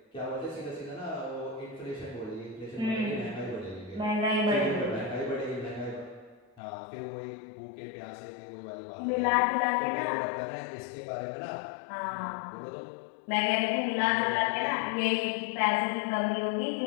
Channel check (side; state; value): right; drops out; at 6.4 s